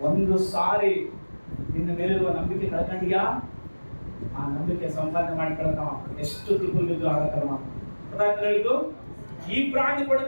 ಒಂದು ಸಾರಿ ನಿನ್ನ ಮೇಲಿರುವ ನಂಬಿಕೆ ಕಳ್ಕೊಂಡಿಯಾ, ಆ ನಂಬಿಕೆ ಸಂಪಾದನೆ ಮಾಡ್ಕೊಳಕ ಎಷ್ಟು ತಿಪ್ಪಲು ಬಿದ್ದು ಆಗತ್ತಲ್ಲ. ಹೇಳಿದ್ದು, ಈ ಬ್ರಾಂಡ್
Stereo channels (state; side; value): inverted; both; correlation -1.00